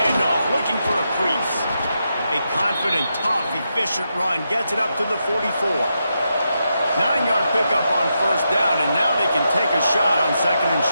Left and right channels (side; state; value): both; inverted; correlation -0.85